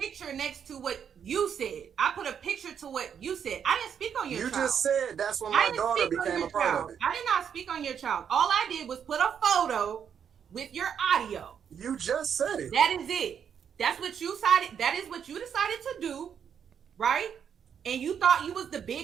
next to what you said. I put a picture to what you said. I didn't speak on your child. You just said that's when my daughter became a part of it. I did not speak on your child. All I did was put a photo with your audio. You just said it. That is it. That's what you decided. That is what you decided to do, right? And you thought you was the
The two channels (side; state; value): left; quieter; 7.9 dB